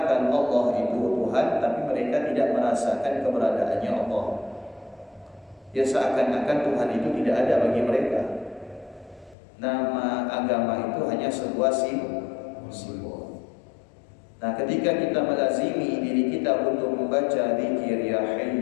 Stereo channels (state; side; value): drops out; right; at 9.3 s